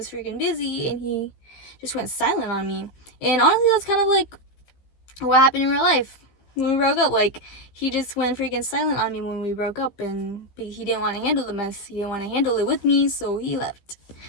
freaking busy, and he just went silent on me. And honestly, that's kind of like what happened in real life when we broke up. Like, he just went freaking silent on me when we broke up, and he didn't want to handle the mess. He didn't want to handle it with me, so he left.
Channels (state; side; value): late; right; 15 ms